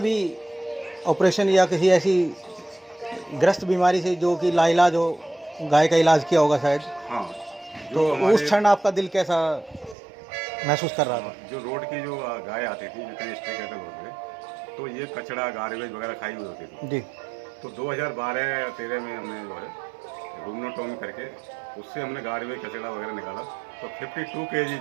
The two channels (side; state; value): left; drops out; at 10.0 s